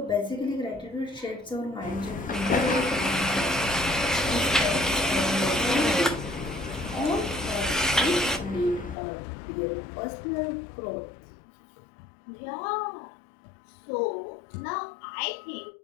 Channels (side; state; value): right; drops out; at 9.0 s